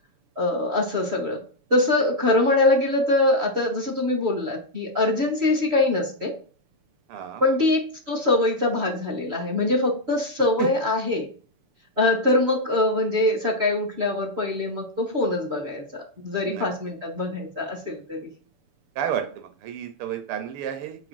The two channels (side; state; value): left; late; 6.9 ms